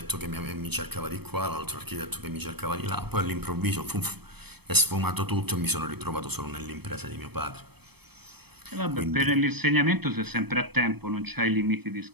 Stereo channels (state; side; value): late; left; 0.97 ms